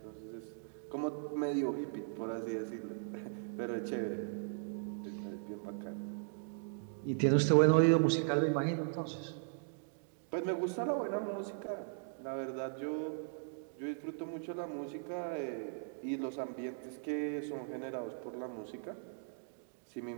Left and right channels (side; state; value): left; silent; digital silence